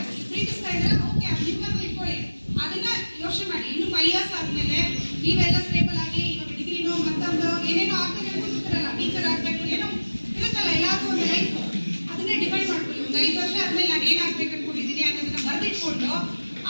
ಪ್ರೀತಿಸ್ತಾ ಇದ್ರೆ ಓಕೆ ನಿಮ್ಮನ್ನು ಇಟ್ಕೊಳ್ಳಿ, ಅದನ್ನ ಯೋಚನೆ ಮಾಡಿ. ಇನ್ನು 5 ಇಯರ್ಸ್ ಆದ್ಮೇಲೆ ನೀವೆಲ್ಲ ಸ್ಟೇಬಲ್ ಆಗಿ ಇವಾಗ ಡಿಗ್ರಿನೋ ಮತ್ತೊಂದು ಏನೇನೋ ಆಗ್ತದೆ ಕೂತಿರಲ್ಲ, ಟೀಚರ್ ಆಗ್ಬೇಕು ಏನೋ ಇರುತ್ತಲ್ಲ, ಎಲ್ಲಾದ್ರೂ ಒಂದು ಲೈಫ್ ಅದನ್ನೇ ಡಿಫೈನ್ ಮಾಡ್ಕೊಳ್ಳಿ. ಒಂದು 5 ವರ್ಷ ಆದ್ಮೇಲೆ ನಾನು ಏನಾಗ್ಬೇಕು ಅನ್ಕೊಂಡಿದ್ದೀನಿ ಅನ್ನೋದನ್ನ ಬರೆದಿಟ್ಕೊಂಡು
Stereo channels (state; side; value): inverted; both; correlation -1.00